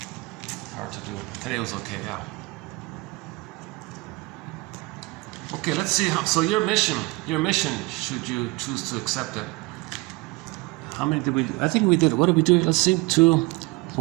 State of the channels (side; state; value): left; quieter; 23.2 dB